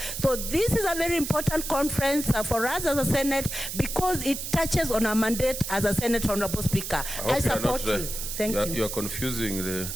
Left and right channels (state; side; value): noise; right; hiss, 6 dB below the sound